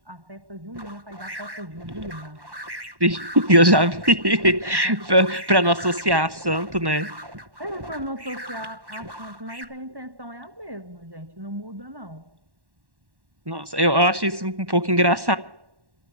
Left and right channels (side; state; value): left; late; 1.1 ms